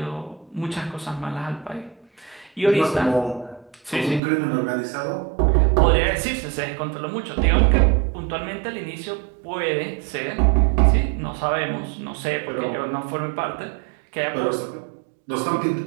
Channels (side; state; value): left; drops out; at 4.2 s